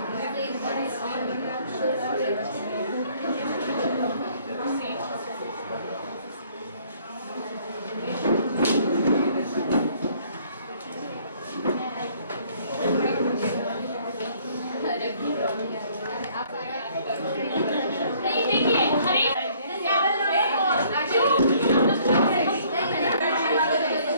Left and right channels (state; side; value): inverted; both; correlation -0.60